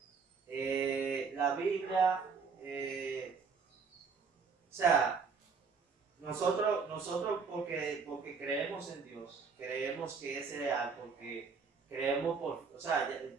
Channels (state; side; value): quieter; left; 5.3 dB